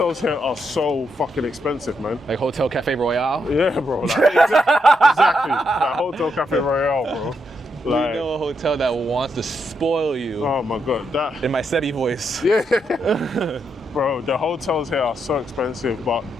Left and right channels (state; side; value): normal; both; correlation 0.80